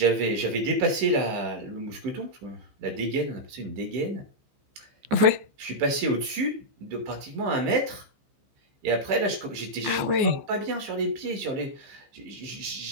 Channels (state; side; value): late; left; 15 ms